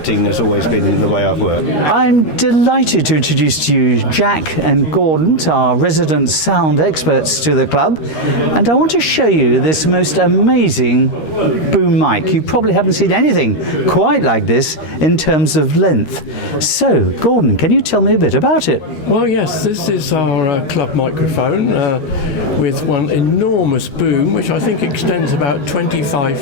has always been the way I've worked. I'm delighted to introduce to you Jack and Gordon, our resident sound experts to the club, and I want to show you this most amazing boom mic. You probably haven't seen anything quite like this in terms of length. So, Gordon, can you tell me a bit about it? Well, yes, this is our club microphone with one enormous boom, which I think extends about 25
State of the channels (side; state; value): right; late; 13 ms